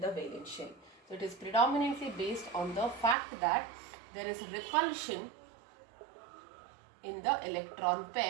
valence shell. So it is predominantly based on the fact that there is repulsion in the electron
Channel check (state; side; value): drops out; left; at 3.2 s